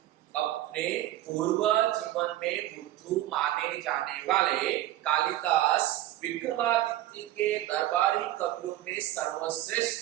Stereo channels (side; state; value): left; quieter; 14.4 dB